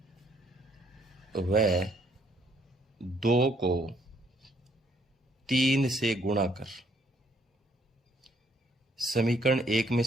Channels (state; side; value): normal; both; correlation 0.67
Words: वह 2 को 3 से गुणा कर। समीकरण 1 में